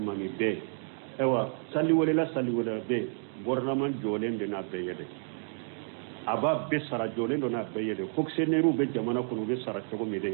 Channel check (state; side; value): silent; left; 58 dB below the other